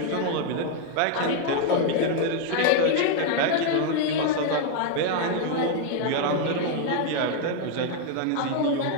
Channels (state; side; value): different; both; correlation 0.00